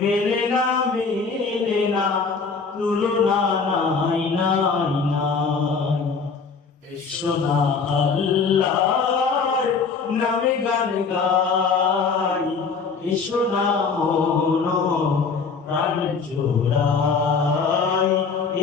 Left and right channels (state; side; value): quieter; right; 5.1 dB